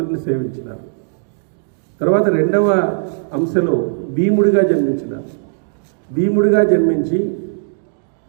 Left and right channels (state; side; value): silent; left; digital silence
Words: సేవించినారు. తర్వాత రెండవ అంశలో భీముడిగా జన్మించినారు. భీముడిగా జన్మించి